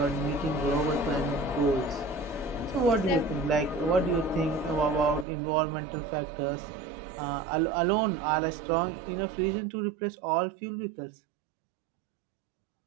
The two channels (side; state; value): left; drops out; at 5.2 s